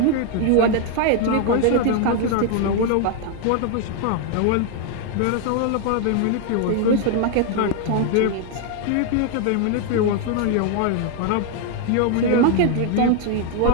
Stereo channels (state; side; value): different; both; correlation 0.00